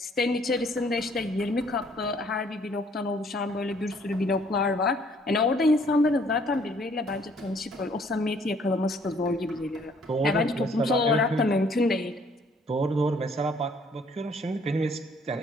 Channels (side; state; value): both; normal; correlation 0.62